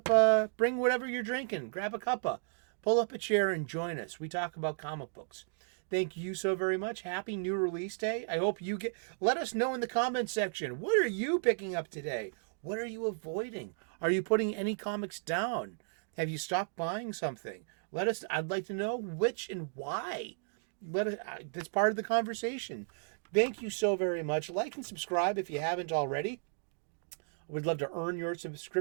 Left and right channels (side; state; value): left; silent; digital silence